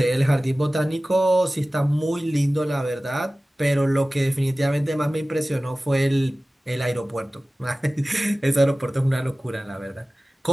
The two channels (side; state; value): both; normal; correlation 0.97